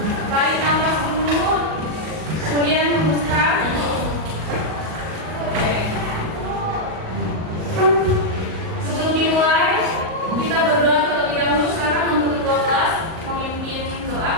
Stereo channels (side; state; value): left; late; 38 ms